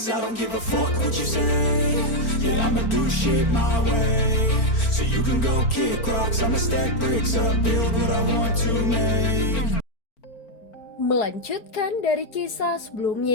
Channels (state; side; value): late; right; 4.4 ms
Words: I don't give a fuck what you say. Yeah, I'ma do shit my way. So you can go kick rocks, I'ma stack bricks up, build what I want to make. Melanjutkan dari kisah